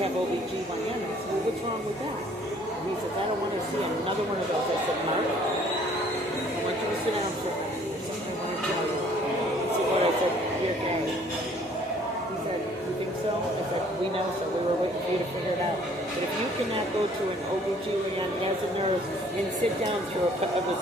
OBGYNs. Well, what's wrong with that? And he says, I don't want to see another one of those. I said, Mark, I want you to sit down for a minute. There's something I want to tell you. He said, what? I said, you're gay. He said, you think so? I said, we know so. We were waiting for you to figure it out. But if you cannot go to an OBGYN as a nurse and sit down through it was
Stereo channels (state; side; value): normal; both; correlation 0.58